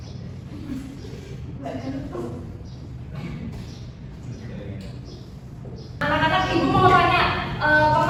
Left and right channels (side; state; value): both; identical; correlation 1.00